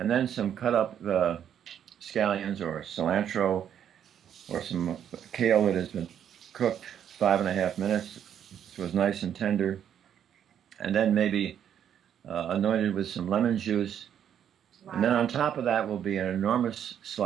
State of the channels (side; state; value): left; quieter; 9.3 dB